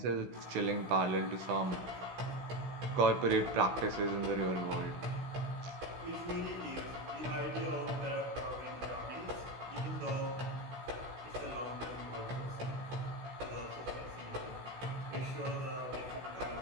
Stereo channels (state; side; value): late; left; 16 ms